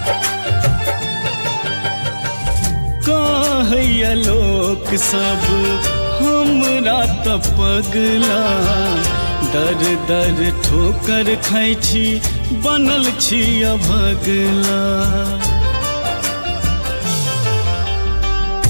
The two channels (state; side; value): inverted; both; correlation -1.00